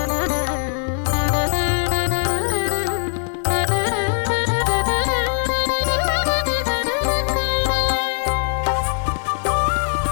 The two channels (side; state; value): right; silent; digital silence